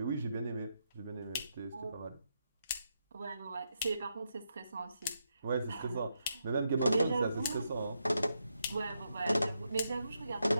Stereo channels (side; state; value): both; inverted; correlation -0.82